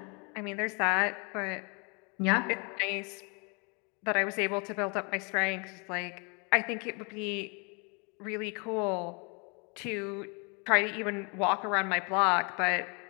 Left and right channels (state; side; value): quieter; right; 33.1 dB